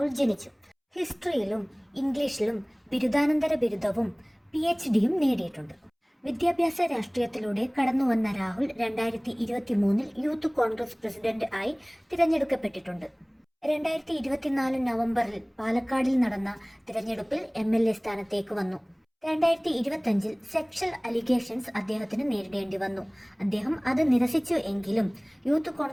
ജനിച്ചു. ഹിസ്റ്ററിയിലും ഇംഗ്ലീഷിലും ബിരുദാനന്തര ബിരുദവും PhDയും നേടിയിട്ടുണ്ട്. വിദ്യാഭ്യാസ രാഷ്ട്രീയത്തിലൂടെ കടന്നുവന്ന രാഹുൽ 2023 യൂത്ത് കോൺഗ്രസ് പ്രസിഡന്റ് ആയി തിരഞ്ഞെടുക്കപ്പെട്ടിട്ടുണ്ട്. 2024 നവംബറിൽ പാലക്കാടിൽ നടന്ന തിരഞ്ഞെടുപ്പിൽ MLA സ്ഥാനത്തേക്ക് വന്നു. 2025 സെക്ഷൽ അലിഗേഷൻസ് അദ്ദേഹത്തിന് നേരിടേണ്ടി വന്നു. അദ്ദേഹം അത് നിരസിച്ചു എങ്കിലും യൂത്ത്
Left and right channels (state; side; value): identical; both; correlation 1.00